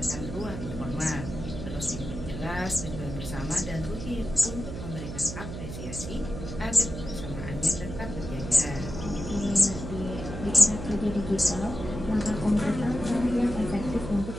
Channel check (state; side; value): noise; right; hum, 8 dB below the sound